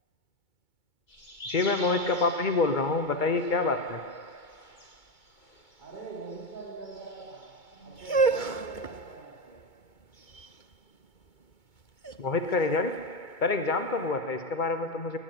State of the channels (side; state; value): right; late; 2.2 ms